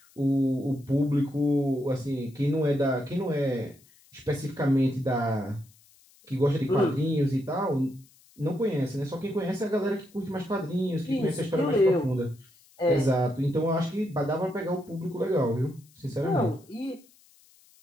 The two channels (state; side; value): noise; left; hiss, 29 dB below the sound